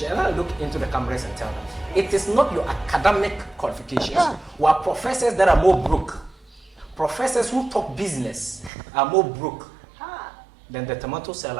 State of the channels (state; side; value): drops out; left; at 8.7 s